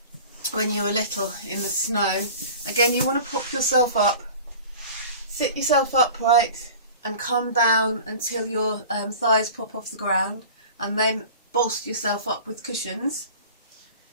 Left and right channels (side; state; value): both; inverted; correlation -0.40